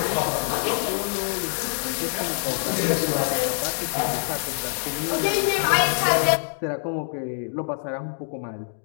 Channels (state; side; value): silent; right; digital silence